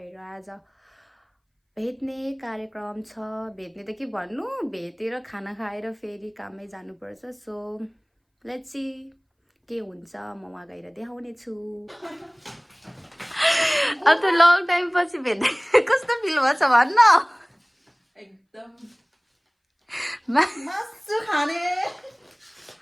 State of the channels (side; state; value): both; identical; correlation 1.00